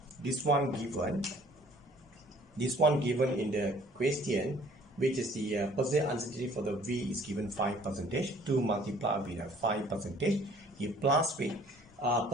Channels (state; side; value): normal; both; correlation 0.55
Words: this one given in the question, which is the percentage uncertainty for the V is given 5%, 2 multiplied with 5%, you plus with